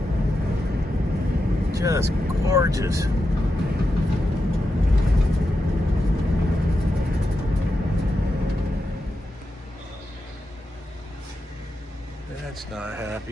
Just gorgeous. That's not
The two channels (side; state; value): both; normal; correlation 0.88